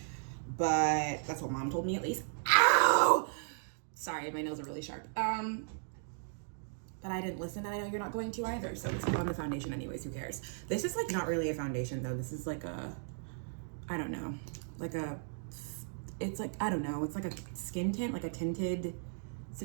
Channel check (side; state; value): left; silent; digital silence